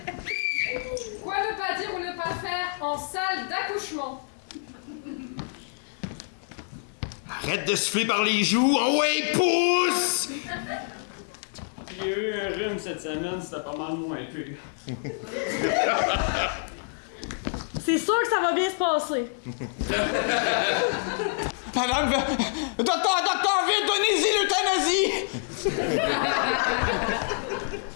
Quoi ne pas dire ou ne pas faire en salle d'accouchement? Arrête de souffler par les joues. Oh ouais, pousse! J'ai eu un rhume cette semaine, c'était pas mal moins pire. C'est sûr que ça va bien se passer. Madame, docteur, vite, donnez-y l'euthanasie!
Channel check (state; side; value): silent; right; digital silence